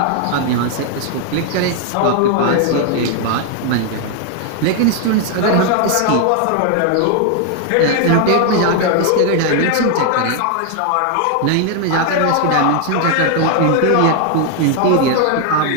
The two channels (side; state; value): both; different; correlation 0.00